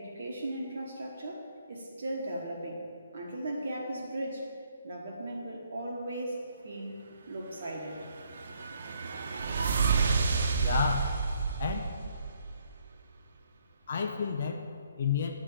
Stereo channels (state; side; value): inverted; both; correlation -0.68